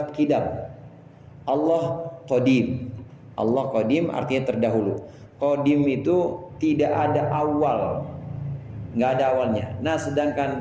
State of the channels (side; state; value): both; identical; correlation 1.00